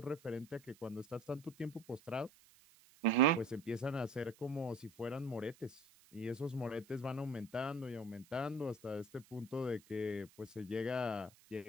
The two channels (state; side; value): noise; right; hiss, 26 dB below the sound